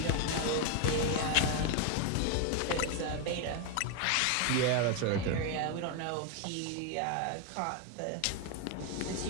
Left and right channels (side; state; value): both; different; correlation 0.01